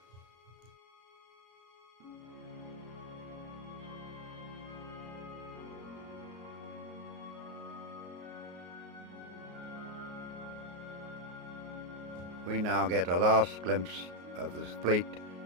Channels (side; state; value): left; late; 33 ms